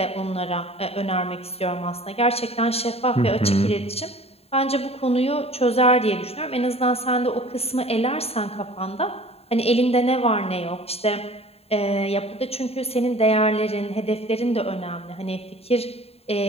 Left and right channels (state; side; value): late; right; 0.29 ms